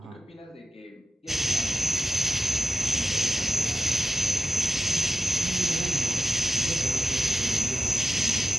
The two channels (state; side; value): normal; both; correlation 0.91